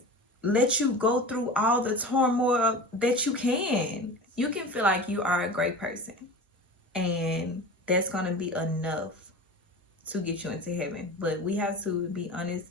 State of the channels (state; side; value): normal; both; correlation 0.33